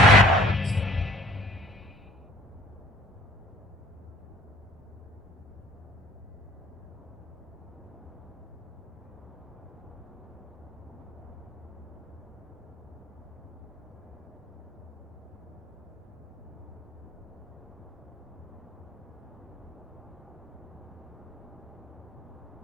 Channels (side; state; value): both; normal; correlation 0.53